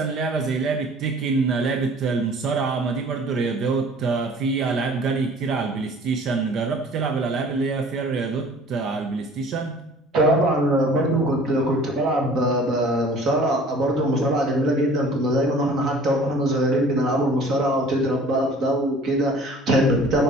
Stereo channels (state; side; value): normal; both; correlation 0.49